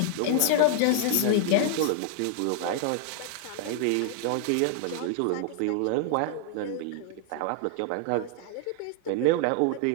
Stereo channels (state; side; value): different; both; correlation 0.00